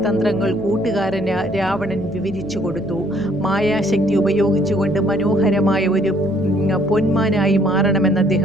തന്ത്രങ്ങൾ കൂട്ടുകാരന് രാവണൻ വിവരിച്ചു കൊടുത്തു. മായാശക്തി ഉപയോഗിച്ചുകൊണ്ട് മനോഹരമായ ഒരു പൊന്മാനായി മാറണമെന്ന്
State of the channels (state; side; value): noise; right; hum, 16 dB below the sound